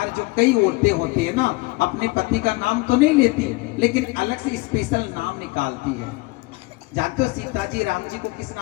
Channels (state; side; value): quieter; right; 24.4 dB